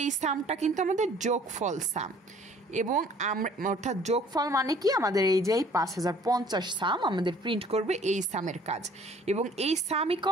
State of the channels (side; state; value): both; normal; correlation 0.55